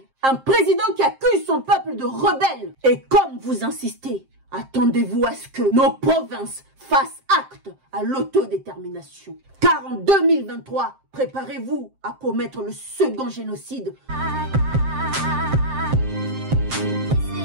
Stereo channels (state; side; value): late; left; 7.6 ms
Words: un président qui accuse son peuple de rebelle. Et comme vous insistez, attendez-vous à ce que nos provinces fassent acte à l'autodétermination. Car en 2023, préparez-vous à commettre le second génocide.